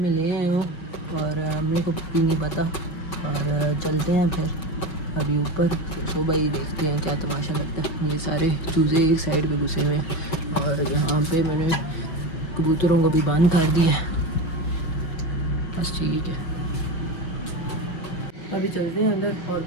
لے آئے ہوں اور امی کو بھی نہیں پتا. اور چلتے ہیں پھر ابھی اوپر. صبح ہی دیکھتے ہیں کیا تماشا لگتا ہے. یہ سارے چوزے ایک سائڈ پہ گھسے ہوئے ہیں، اور یہاں پہ میں نے کبوتروں کو بھی بند کر دیا ہے. بس ٹھیک ہے، ابھی چلتے ہیں اندر، اور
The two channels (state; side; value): late; right; 5.9 ms